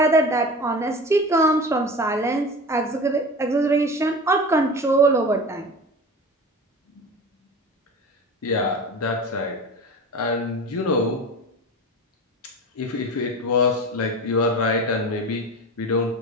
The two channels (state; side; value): normal; both; correlation 0.32